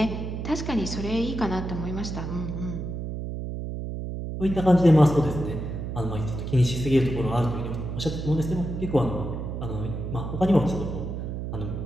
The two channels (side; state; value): right; noise; hum, 5 dB below the sound